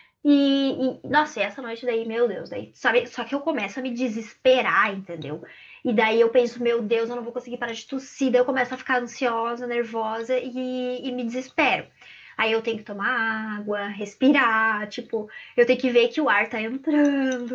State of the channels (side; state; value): both; identical; correlation 1.00